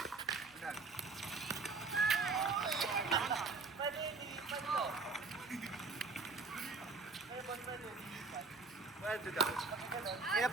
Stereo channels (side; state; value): left; quieter; 4.2 dB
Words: Pwede daw. Kaya